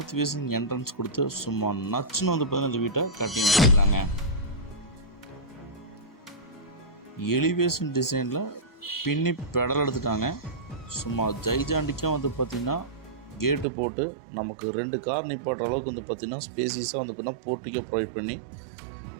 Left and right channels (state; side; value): drops out; left; at 13.7 s